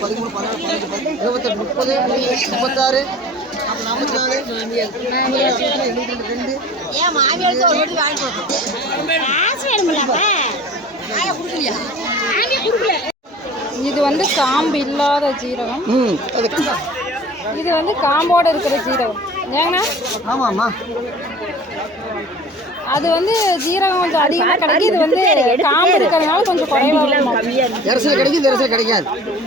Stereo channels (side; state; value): both; normal; correlation 0.43